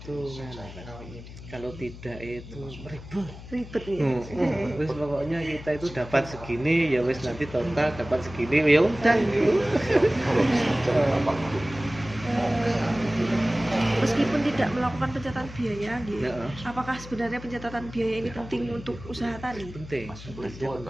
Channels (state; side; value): noise; left; hum, 14 dB below the sound